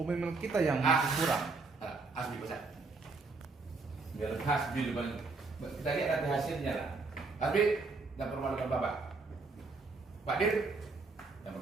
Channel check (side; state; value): left; quieter; 4.0 dB